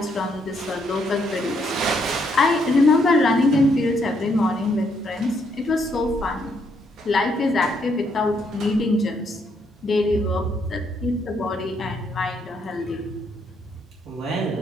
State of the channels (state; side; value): normal; both; correlation 0.74